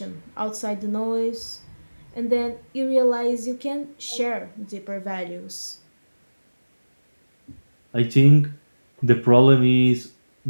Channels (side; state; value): both; inverted; correlation -1.00